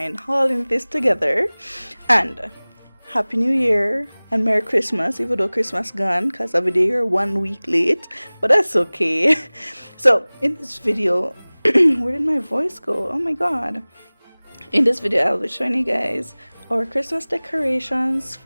hauling this together? And Happy New Year and Merry Christmas, even though Christmas gone, because every day you're 1 week late, but that's okay. So, in this video, where did my voice go? Oh my god. In this video, I'll be showing you guys our Christmas decorations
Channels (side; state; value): both; inverted; correlation -1.00